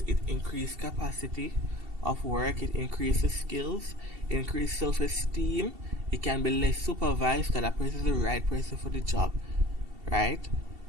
it increases capacity of work, it increases skills, it increases self-esteem, it can be less supervised because that person is the right person for the job, right?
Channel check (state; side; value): late; left; 2.7 ms